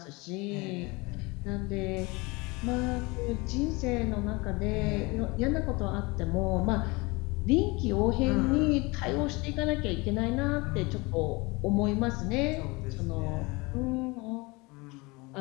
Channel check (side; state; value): right; quieter; 25.3 dB